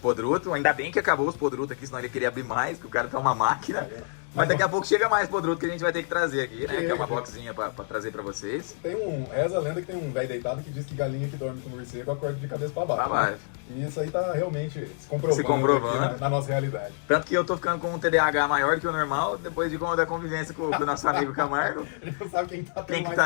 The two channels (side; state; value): right; silent; 60 dB below the other